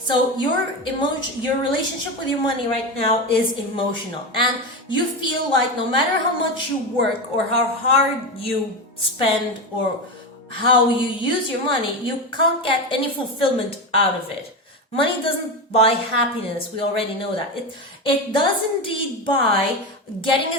your relationship with your money right now is emotional, and you feel like no matter how much you work or how hard you spend or how you use your money, you can't get any fulfillment out of it. Money doesn't buy happiness. We already know that. It does indeed buy getting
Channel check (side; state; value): both; normal; correlation 0.18